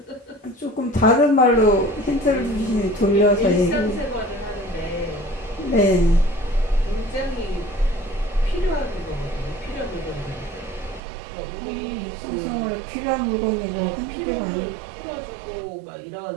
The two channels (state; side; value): drops out; left; at 11.0 s